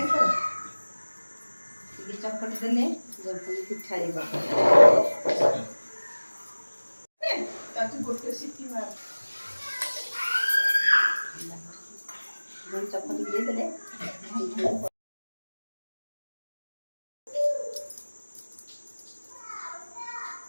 କି ତୋର ଟିକେ ଚକଟି ଦେଲେ ପିଠା ଗୋଟେ ସିଟି ମାର ଚକଟି ଦେଇଦେଲେ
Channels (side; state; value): both; inverted; correlation -1.00